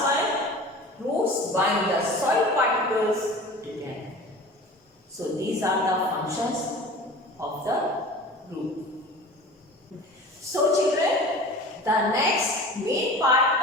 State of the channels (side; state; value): both; normal; correlation 0.38